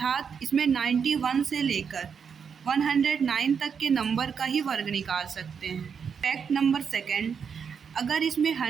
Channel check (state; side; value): quieter; left; 6.6 dB